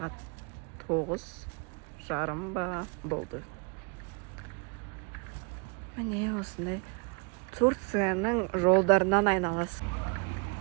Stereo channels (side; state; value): left; quieter; 33.5 dB